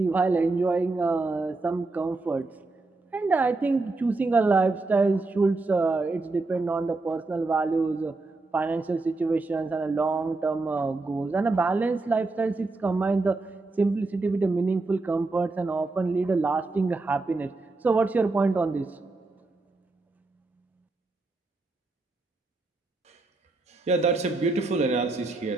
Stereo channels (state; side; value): quieter; left; 3.4 dB